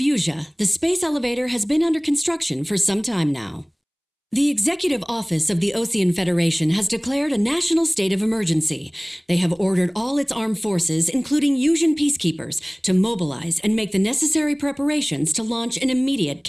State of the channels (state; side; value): identical; both; correlation 1.00